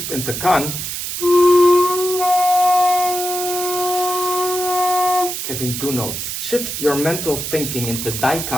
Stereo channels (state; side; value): noise; right; hiss, 5 dB below the sound